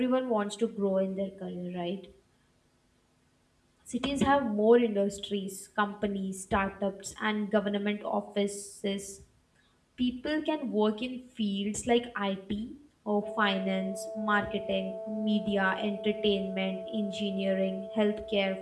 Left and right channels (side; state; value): both; identical; correlation 1.00